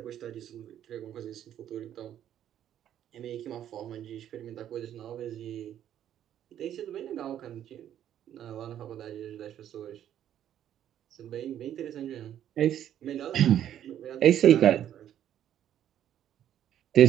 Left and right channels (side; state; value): left; quieter; 10.8 dB